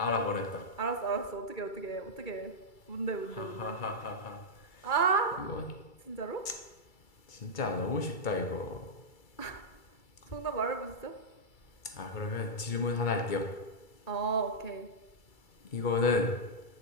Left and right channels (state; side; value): late; right; 2.3 ms